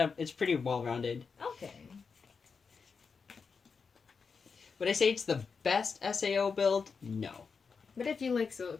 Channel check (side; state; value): right; quieter; 5.4 dB